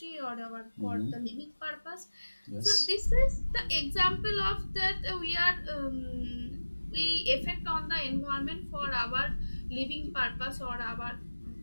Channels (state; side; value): inverted; both; correlation -1.00